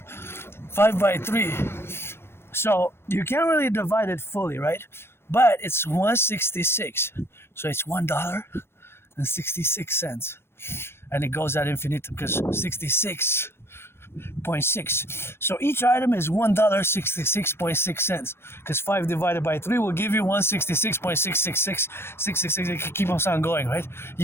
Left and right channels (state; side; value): late; right; 0.12 ms